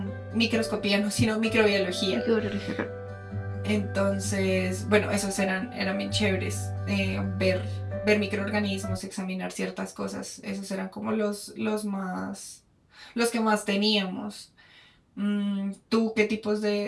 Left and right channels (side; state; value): both; identical; correlation 1.00